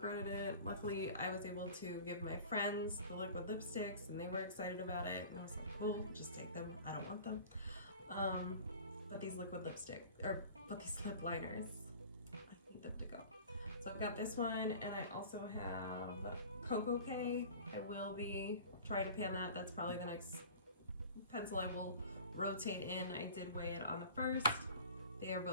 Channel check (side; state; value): both; inverted; correlation -0.41